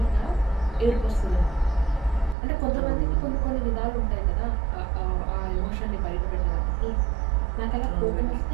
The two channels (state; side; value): drops out; left; at 2.4 s